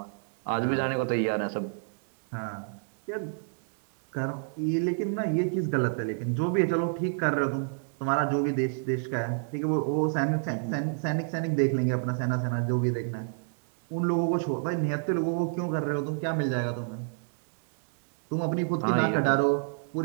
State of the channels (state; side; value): silent; left; digital silence